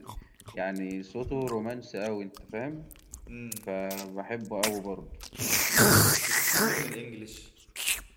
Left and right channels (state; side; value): identical; both; correlation 1.00